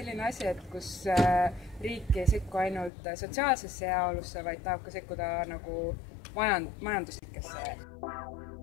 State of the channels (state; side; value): drops out; right; at 2.9 s